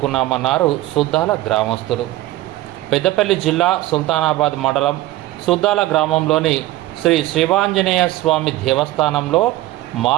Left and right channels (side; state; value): left; quieter; 16.5 dB